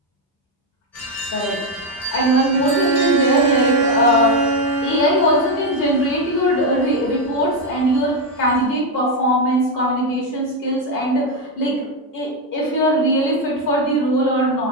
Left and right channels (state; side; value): normal; both; correlation 0.05